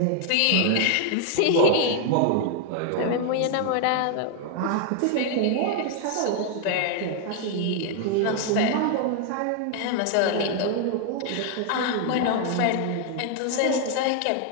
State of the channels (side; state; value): both; different; correlation 0.00